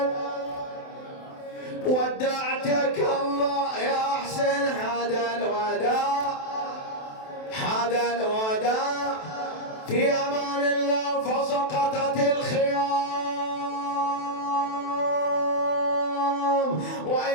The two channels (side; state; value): right; late; 27 ms